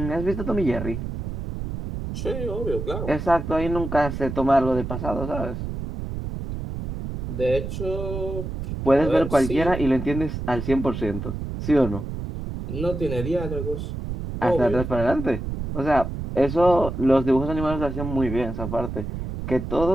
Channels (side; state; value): right; noise; rumble, 6 dB below the sound